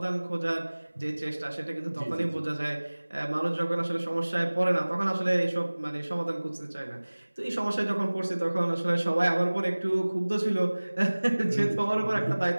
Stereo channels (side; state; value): both; inverted; correlation -1.00